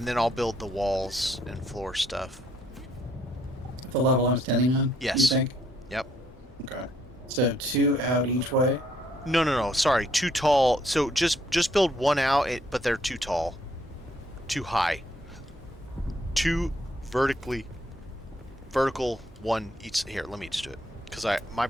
then I'll build the walls and floor stuff. The level I'm standing on? Yes. You think? Yep. Okay. So 2 out each way? No. Sorry, too tall. So just build 1 out, but they're too tall. Too high. 2 vertical, 1 each. Here, let me just do it. Because my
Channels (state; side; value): normal; both; correlation 0.69